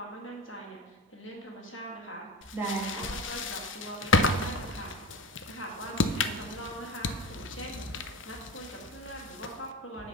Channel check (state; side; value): normal; both; correlation 0.30